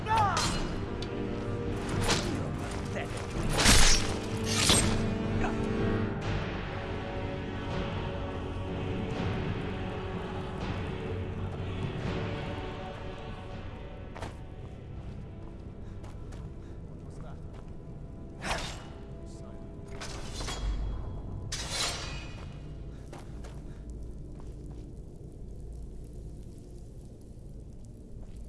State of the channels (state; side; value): identical; both; correlation 1.00